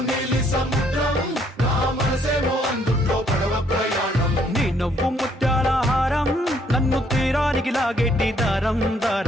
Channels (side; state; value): both; normal; correlation 0.68